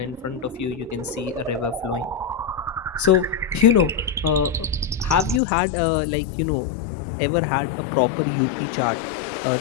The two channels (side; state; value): right; drops out; at 5.4 s